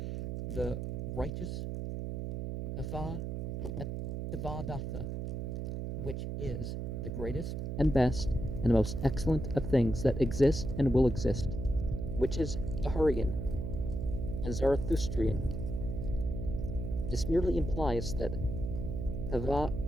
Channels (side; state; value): right; noise; hum, 4 dB below the sound